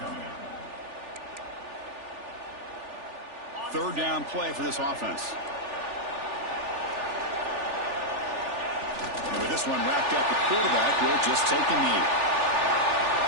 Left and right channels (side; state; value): left; late; 3.4 ms